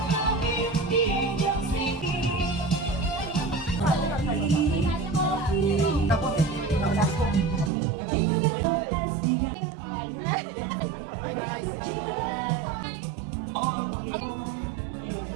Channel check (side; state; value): left; drops out; at 7.7 s